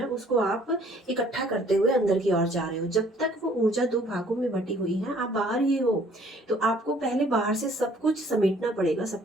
उसको आप इकट्ठा करते हुए अंदर की ओर जा रहे हो। जब तक वो ऊर्जा दो भागों में बटी हुई है, आप बाहर ही हो। तो आपको पहले बाहर से सब कुछ समेटना पड़ेगा, सब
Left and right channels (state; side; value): normal; both; correlation 0.59